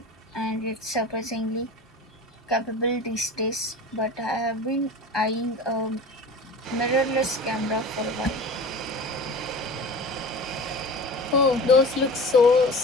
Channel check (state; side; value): normal; both; correlation 0.36